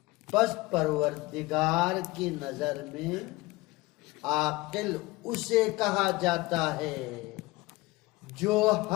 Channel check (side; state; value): right; quieter; 21.3 dB